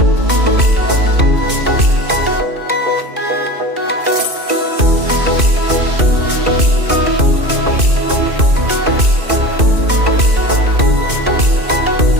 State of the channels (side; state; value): left; late; 2.5 ms